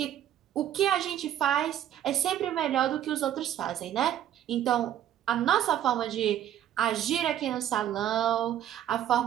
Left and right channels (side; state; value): left; quieter; 11.1 dB